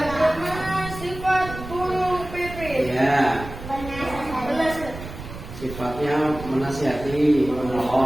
sifat burung pipit? Ya, Belas. sifatnya menasihati,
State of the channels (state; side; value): noise; right; rumble, 12 dB below the sound